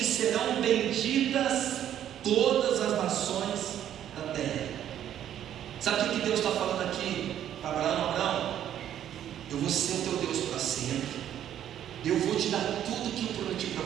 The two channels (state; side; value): quieter; left; 10.7 dB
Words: serão benditas todas as nações da terra. Sabe o que Deus está falando aqui para Abraão? Abraão, eu vou ser o teu Deus para sempre, eu vou te dar tudo que eu prometi para